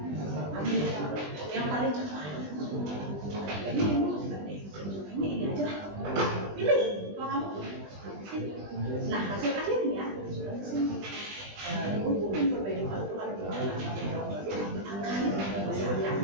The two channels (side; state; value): left; late; 20 ms